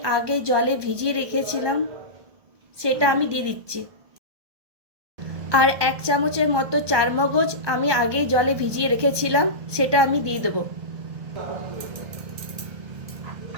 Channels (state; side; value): late; left; 1.2 ms